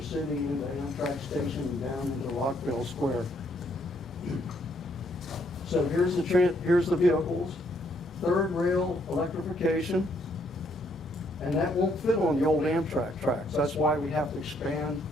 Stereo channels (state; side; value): normal; both; correlation 0.70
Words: City into Amtrak Station and down into Rockville Square. So here's the vehicles. Third rail electrification. And that won't fit on the old Amtrak tracks. That's why we have to expand